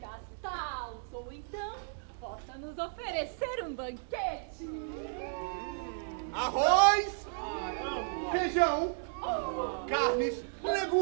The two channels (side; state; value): left; silent; digital silence